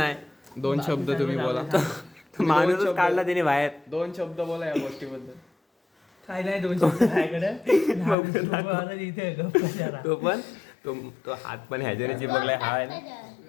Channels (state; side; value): drops out; right; at 8.2 s